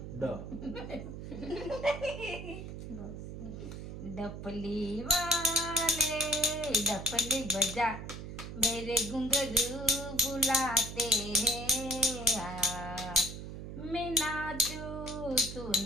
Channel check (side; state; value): right; noise; hum, 9 dB below the sound